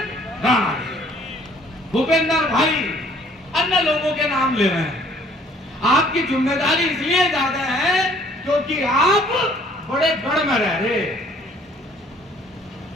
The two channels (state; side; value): normal; both; correlation 0.58